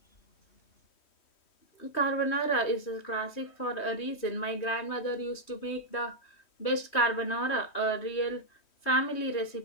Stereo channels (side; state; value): right; late; 3.1 ms